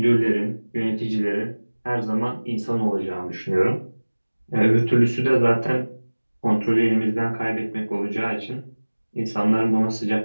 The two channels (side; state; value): both; inverted; correlation -1.00